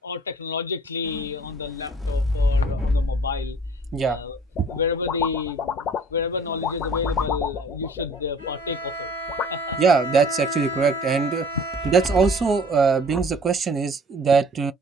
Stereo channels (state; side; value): normal; both; correlation 0.51